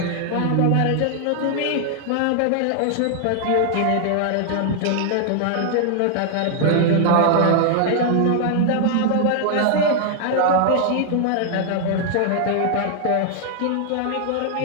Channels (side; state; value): both; different; correlation -0.01